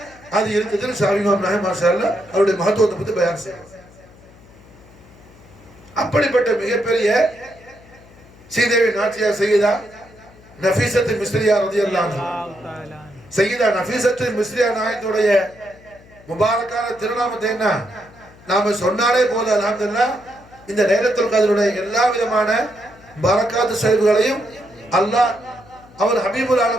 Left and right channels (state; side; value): noise; left; hum, 24 dB below the sound